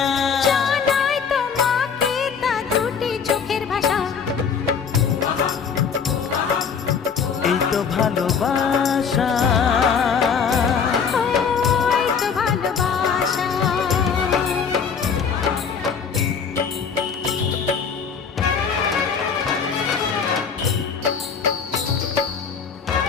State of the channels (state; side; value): quieter; right; 6.4 dB